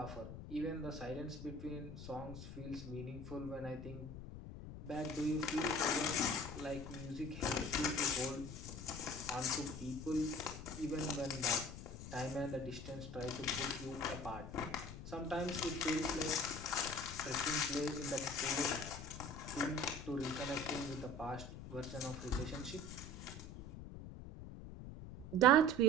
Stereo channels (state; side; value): noise; left; rumble, 10 dB below the sound